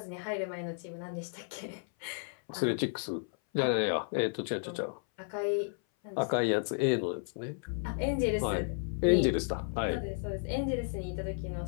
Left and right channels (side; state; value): right; silent; 56 dB below the other